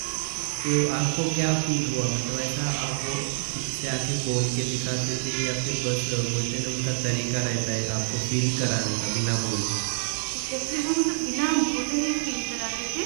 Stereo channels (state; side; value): silent; left; 60 dB below the other